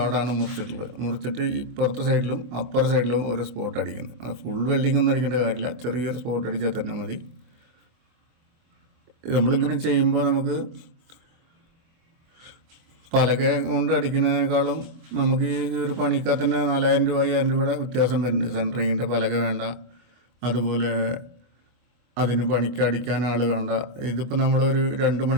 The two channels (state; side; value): late; left; 24 ms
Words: മുറിച്ചിട്ട് ഇപ്പുറത്തെ സൈഡിലും അപ്പുറ സൈഡിലും ഓരോ സ്പോട്ട് അടിക്കുന്നത്. അത് ഫുൾ വെൽഡിംഗ് ഒന്നും അടിക്കേണ്ട കാര്യമില്ല, ചെറിയൊരു സ്പോട്ട് അടിച്ചാൽ തന്നെ മതി. നമ്മളിങ്ങനെ ചെയ്യുമ്പോൾ നമുക്ക് പലക കൊണ്ട് അടിക്കുന്നതിനേക്കാളും നമുക്ക് ഈ ഒരു പണിക്കാൽ തന്നെ 4000 രൂപ 5000 രൂപയുടെ വ്യത്യാസം വരുന്നുണ്ട്. സെൻറ്ററിങ്ങിൻ്റെ പലക വേണ്ട, അതുപോലെ അതിന് പണിക്ക് അടിക്കാൻ ആൾ വേണ്ട. ഇതിപ്പോൾ നമ്മളൊരു 2